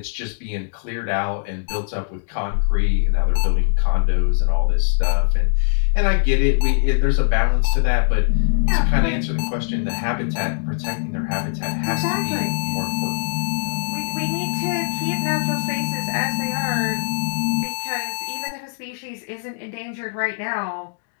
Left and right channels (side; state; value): right; silent; digital silence